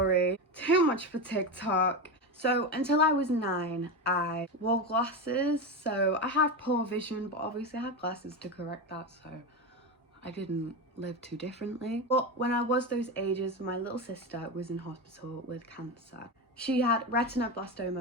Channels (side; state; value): both; normal; correlation 0.18